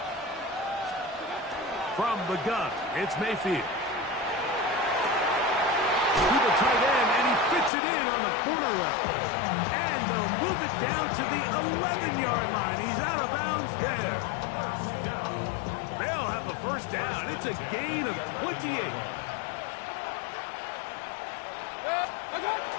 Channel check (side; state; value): right; drops out; at 7.7 s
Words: From the gun, it's Mayfield. Tight end, and he fits it in on the corner route. And they'll move it down to the 11-yard line. He's out of bounds there. They'll have a 1st down. It's a gain of 28.